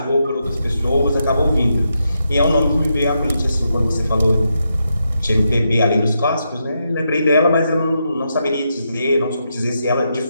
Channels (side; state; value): both; inverted; correlation -0.83